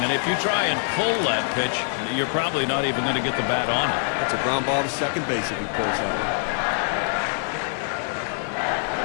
And if you try and pull that pitch, you're probably not even going to get the bat on it. That's a ground ball to second base if he pulls that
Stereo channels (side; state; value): right; silent; digital silence